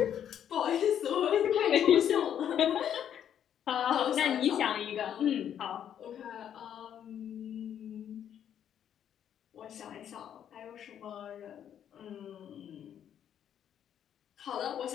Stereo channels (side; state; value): right; quieter; 9.5 dB